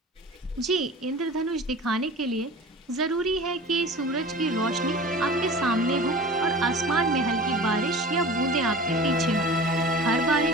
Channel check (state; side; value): normal; both; correlation 0.38